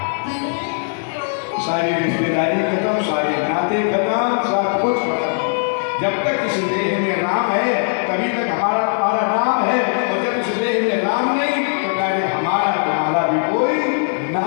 सारी रिश्तेदारी खत्म, सारे नाते खत्म, सब कुछ खत्म। जब तक इस देह में राम है तभी तक हमारा नाम है, और जब इस देह में राम नहीं तो कहे हमारा तुम्हारा भी कोई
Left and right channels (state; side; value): silent; right; 59 dB below the other